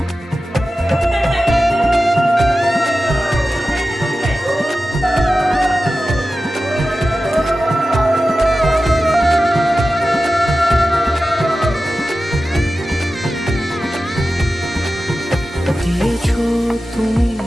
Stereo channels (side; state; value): both; normal; correlation 0.94